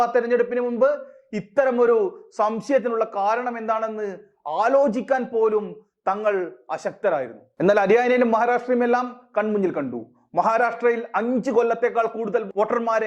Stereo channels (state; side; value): identical; both; correlation 1.00